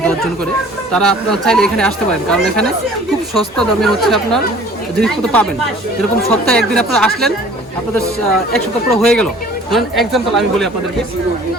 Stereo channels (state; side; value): normal; both; correlation 0.50